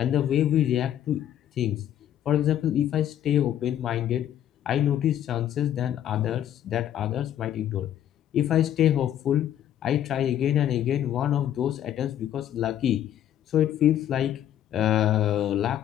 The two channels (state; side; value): quieter; right; 11.0 dB